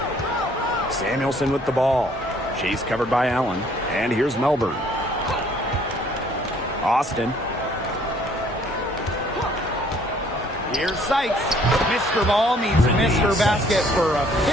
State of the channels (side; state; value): both; normal; correlation 0.60